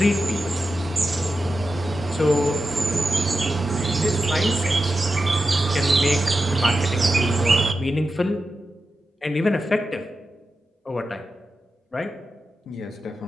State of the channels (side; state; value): both; normal; correlation 0.91